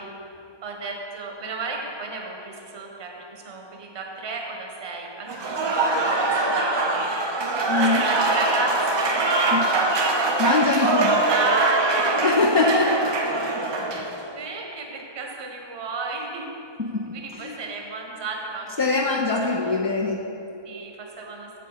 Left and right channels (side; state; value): left; late; 1.2 ms